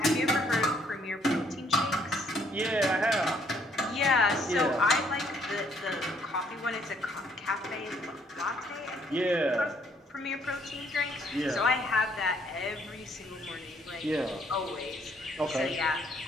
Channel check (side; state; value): both; normal; correlation 0.66